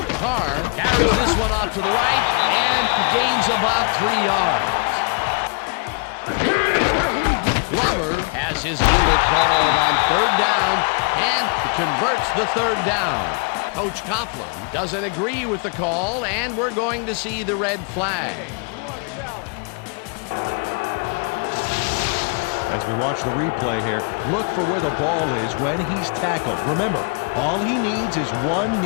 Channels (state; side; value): quieter; right; 33.3 dB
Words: Carr carries this one off to the right and gains about 3 yards. Glover has his number called on third down and converts the third down. Coach Coughlin doesn't agree with the call, and we're going to see the red flag. As we watch the replay here, look for where the ball is when he's tackled. Remember, all he needs is one